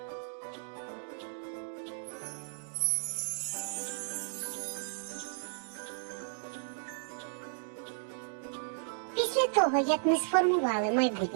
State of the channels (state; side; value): silent; left; digital silence